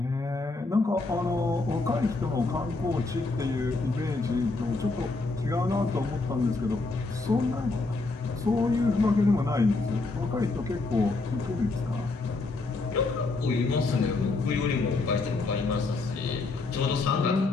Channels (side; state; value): right; quieter; 3.5 dB